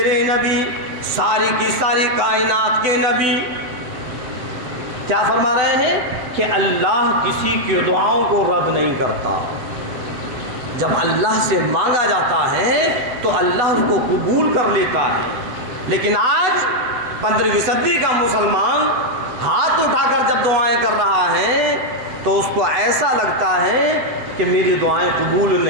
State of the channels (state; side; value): late; left; 8.0 ms